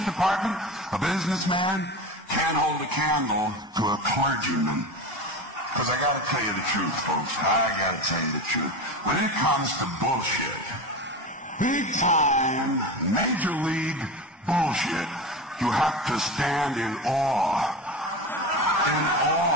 a businessman can't hold a candle to a clergyman. Because I gotta tell you the truth, folks. I gotta tell you the truth. When it comes to bullshit, big time, major league bullshit, you have to stand in awe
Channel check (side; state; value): both; normal; correlation 0.27